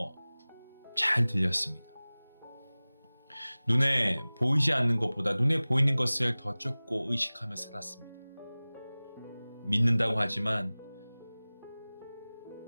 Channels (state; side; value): inverted; both; correlation -0.99